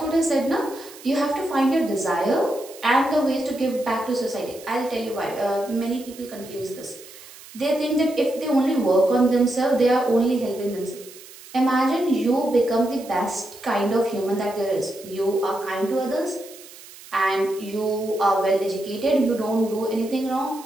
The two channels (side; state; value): right; noise; hiss, 19 dB below the sound